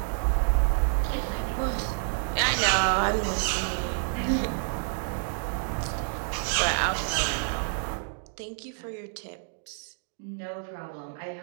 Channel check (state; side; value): silent; left; digital silence